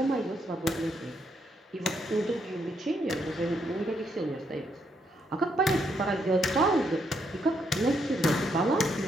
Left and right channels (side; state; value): both; normal; correlation 0.76